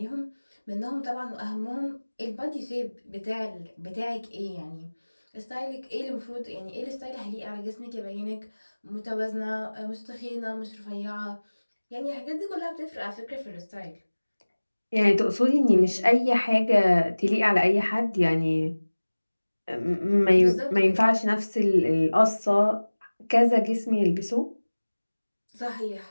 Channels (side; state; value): both; inverted; correlation -1.00